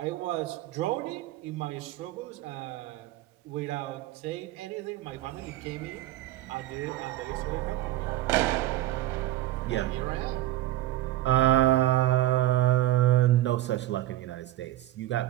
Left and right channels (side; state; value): left; quieter; 15.0 dB